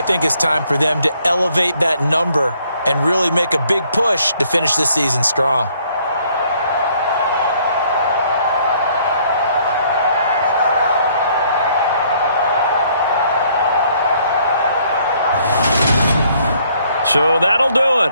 think it's time for them to elevate that number and really make a big push to finish this season strong. So that'll do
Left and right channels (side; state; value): both; inverted; correlation -0.64